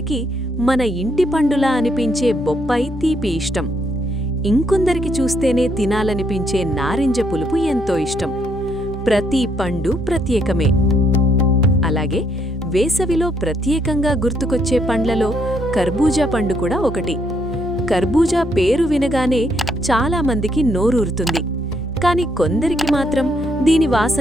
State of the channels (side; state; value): both; normal; correlation 0.73